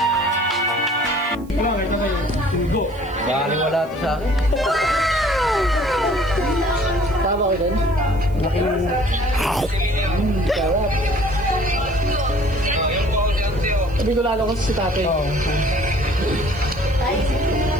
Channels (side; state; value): right; noise; hiss, 27 dB below the sound